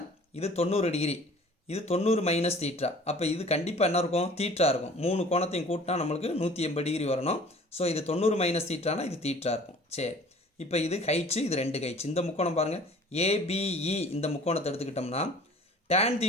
இது 90 டிகிரி, இது 90 மைனஸ் தீட்டா. அப்போ இது கண்டிப்பாக என்ன இருக்கும்? தீட்டா இருக்கும். 3 கோணத்தையும் கூட்டினா நம்மளுக்கு 180 டிகிரி வரணும். ஸோ இது 90 மைனஸ் தீட்டானா இது தீட்டா இருக்கும். சரி, இப்போ இது ஹைட்ஸு, இது 2 ஹைட்ஸ். இந்த முக்கோணம் பாருங்கள், ஏபிஇ. இந்த முக்கோணத்தை எடுத்துக்கிட்டோம்னா tan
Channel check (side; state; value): both; normal; correlation 0.48